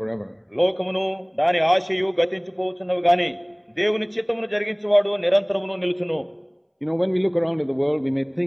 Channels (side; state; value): both; identical; correlation 1.00